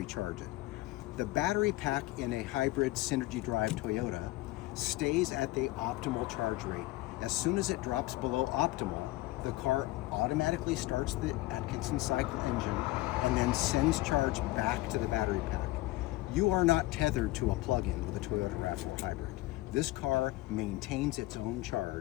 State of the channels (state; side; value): quieter; right; 18.9 dB